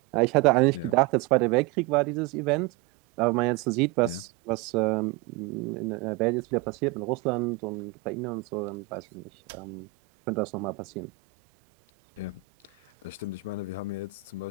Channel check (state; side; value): quieter; left; 16.0 dB